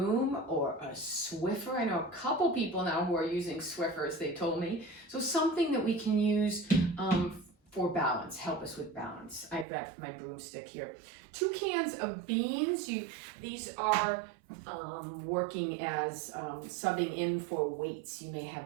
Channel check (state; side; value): drops out; left; at 9.7 s